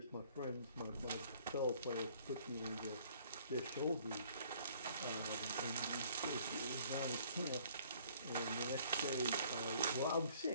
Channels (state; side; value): inverted; both; correlation -0.58